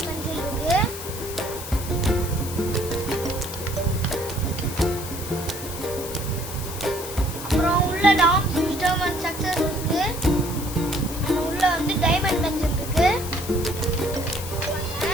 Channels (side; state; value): left; noise; hiss, 10 dB below the sound